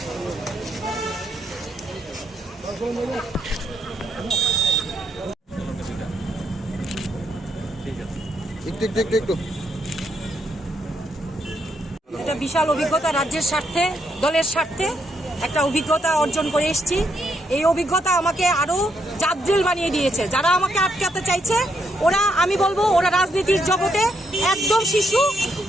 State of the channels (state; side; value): normal; both; correlation 0.77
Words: একটু এটা বিশাল অভিজ্ঞতা, রাজ্যের স্বার্থে, দলের স্বার্থে একটা অভিজ্ঞতা অর্জন করে এসেছি। এই অভিজ্ঞতা আমাকে আরো জাদ্রেল বানিয়ে দিয়েছে। যারা আমাকে আটকাতে চাইছে আমি বলবো ওরা রাজনীতির জগতে একদম শিশু।